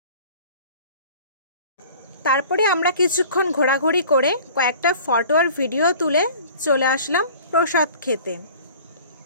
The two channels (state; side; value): inverted; both; correlation -0.45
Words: তারপরে আমরা কিছুক্ষণ ঘোরাঘুরি করে কয়েকটা ফটো আর ভিডিও তুলে চলে আসলাম প্রসাদ খেতে।